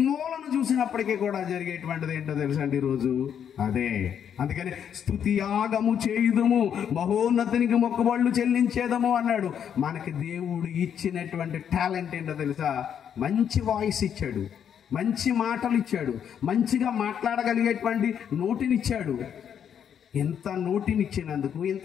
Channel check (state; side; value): quieter; right; 8.5 dB